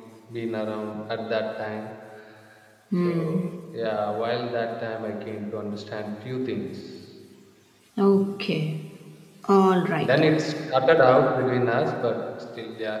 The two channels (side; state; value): both; identical; correlation 1.00